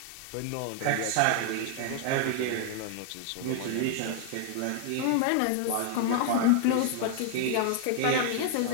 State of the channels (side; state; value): both; different; correlation 0.00